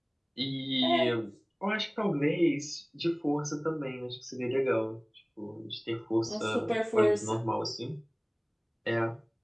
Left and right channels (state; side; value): identical; both; correlation 1.00